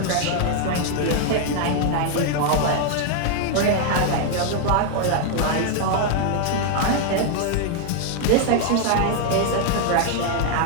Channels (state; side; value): different; both; correlation 0.00